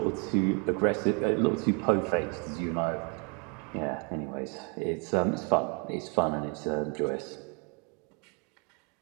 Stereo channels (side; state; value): left; quieter; 35.0 dB